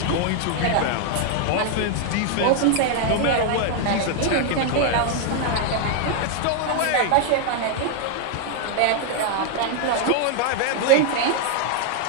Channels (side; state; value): both; different; correlation 0.00